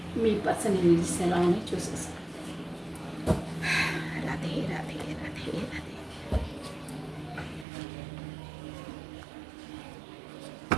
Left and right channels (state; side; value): drops out; left; at 7.7 s